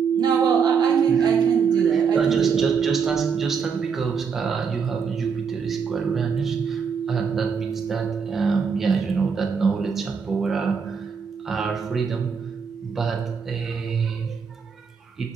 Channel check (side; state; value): left; quieter; 6.2 dB